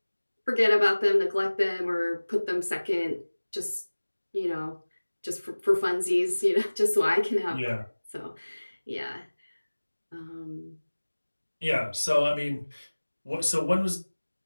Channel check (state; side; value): inverted; both; correlation -1.00